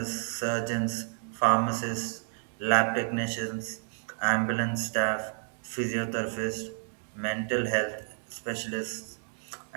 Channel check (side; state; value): left; silent; digital silence